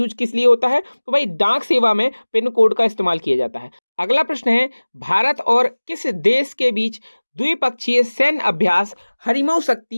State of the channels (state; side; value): inverted; both; correlation -1.00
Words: किस लिए होता है? तो भाई डाक सेवा में पिन कोड का इस्तेमाल किया जाता है। अगला प्रश्न है, भारत और किस देश के बीच द्विपक्षीय सैन्य अभ्यास हरिमऊ